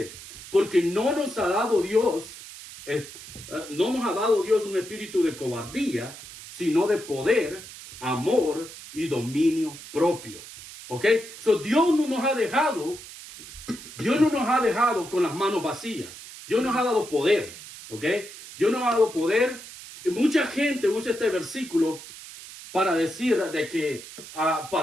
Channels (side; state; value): right; noise; hiss, 15 dB below the sound